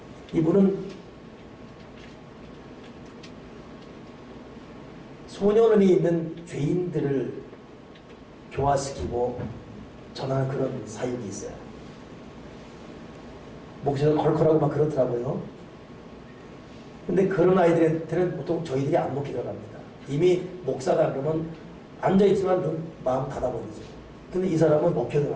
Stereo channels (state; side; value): identical; both; correlation 1.00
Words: 이분은 소년원에 있는 죄인들을 교화시키고 전하는 그런 사역이 있어요. 목소리가 컬컬하고 막 그렇더라고요. 근데 그런 아이들한테는 보통 저희들이 안 먹히더라고 합니다. 이미 목사다 그러면 앉아있지만 마음 닫아버리죠. 근데 이 사람은